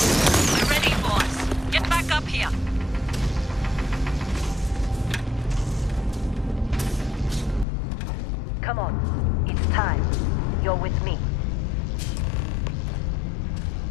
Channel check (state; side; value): drops out; right; at 7.7 s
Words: We're ready, boss. Get back up here. Come on. It's time. You're with me.